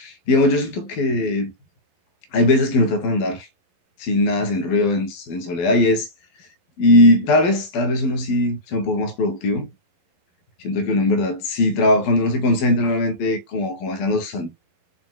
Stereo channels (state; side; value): late; right; 12 ms